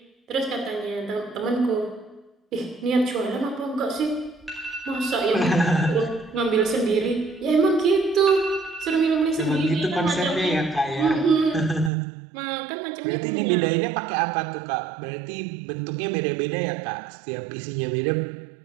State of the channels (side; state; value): left; drops out; at 11.9 s